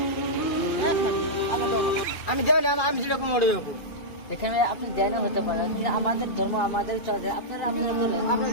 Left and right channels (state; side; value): late; right; 2.5 ms